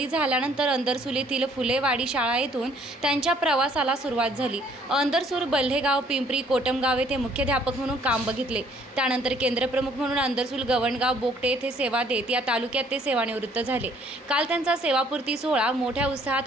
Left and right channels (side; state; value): both; normal; correlation 0.62